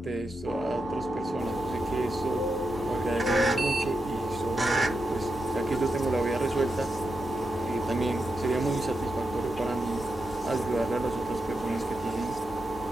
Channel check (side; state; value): both; normal; correlation 0.87